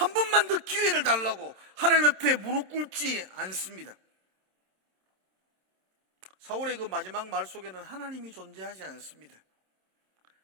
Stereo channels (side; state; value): left; late; 27 ms